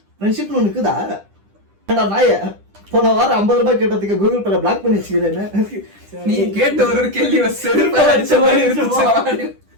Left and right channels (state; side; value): late; left; 10 ms